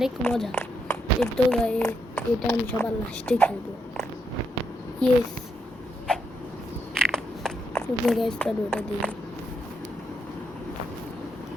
মজা তো এটা আমি সবার লাস্টে খেলবো ইয়েস তো গাইস চলো ওটা দিই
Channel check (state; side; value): normal; both; correlation 0.79